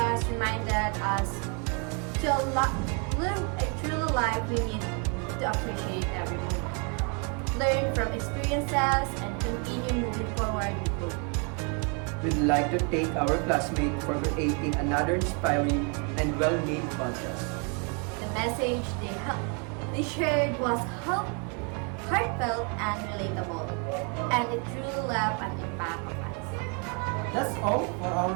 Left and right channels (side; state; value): left; quieter; 36.3 dB